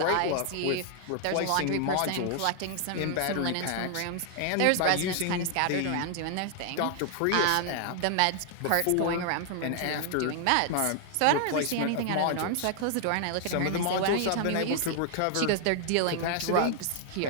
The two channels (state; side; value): different; both; correlation 0.00